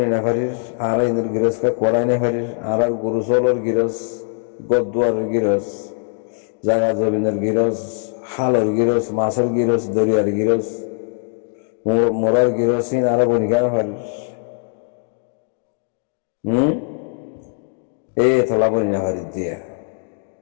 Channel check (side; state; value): right; silent; digital silence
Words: না পারিস আর ইনার গিরসকা করাই না পারিস আর গরু চলর গিরস গদুয়ারের গিরস জায়গা জমিনের গিরস হালর গিরস মাছের গিরস দরিয়ার গিরস মোরার গিরস আর বনি কেন পারিস থলা বনি না পারিস দিয়া